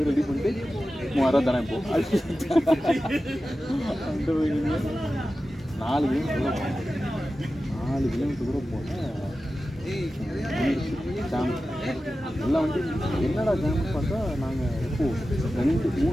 ரெடி பண்ணிட்டு 3000 ரூபா தானே இப்போ அந்த போய் நீங்கள் 4 கிலோமீட்டர் கூட போனேன். ஜாம் எல்லாம் வந்து என்னடா ஜாம்னு பார்த்தா நாங்கள் எப்போது 2-3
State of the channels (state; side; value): normal; both; correlation 0.94